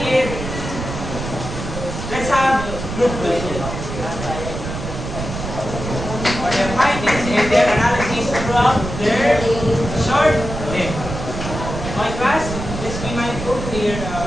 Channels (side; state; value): right; noise; rumble, 7 dB below the sound